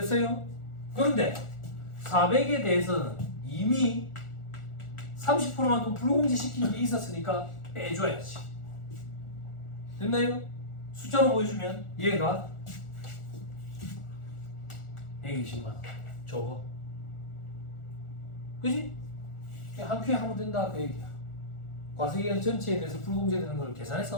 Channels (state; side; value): late; right; 1.4 ms